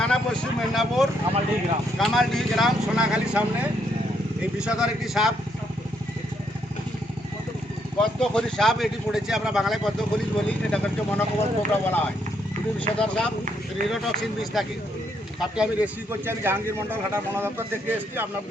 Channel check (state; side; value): normal; both; correlation 0.74